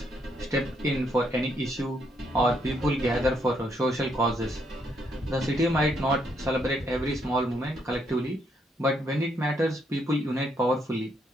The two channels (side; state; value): both; normal; correlation 0.74